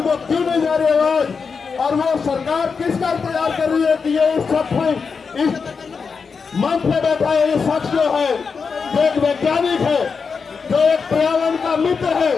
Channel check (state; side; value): quieter; right; 5.4 dB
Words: को क्यों नहीं जा रही आवाज, और वो सरकार किसका इंतजार कर रही है कि ये इस मंच पे बैठा है, ये शख्स जो है, जो एक वैज्ञानिक है, जो एक पर्यावरण का मित्र है,